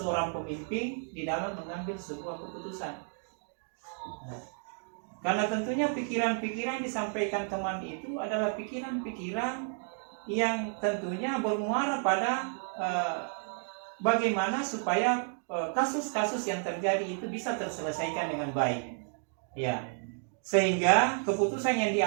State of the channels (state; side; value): silent; left; 57 dB below the other